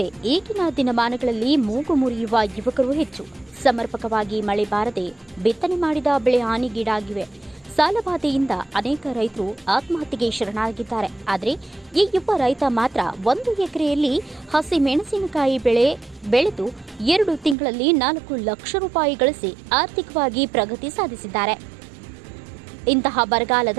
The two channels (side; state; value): left; drops out; at 17.6 s